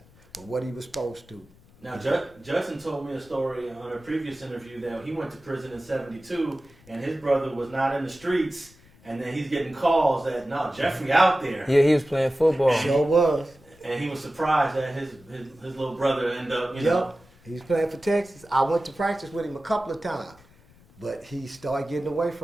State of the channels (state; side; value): noise; left; rumble, 27 dB below the sound